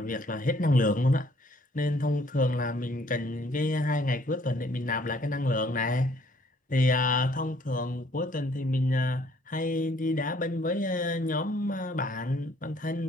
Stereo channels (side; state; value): both; normal; correlation 0.62